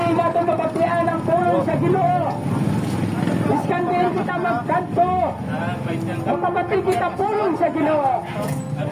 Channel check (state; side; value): identical; both; correlation 1.00